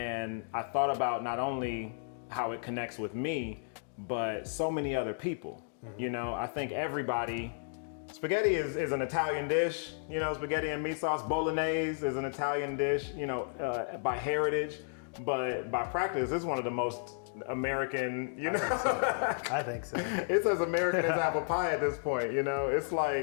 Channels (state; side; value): silent; right; digital silence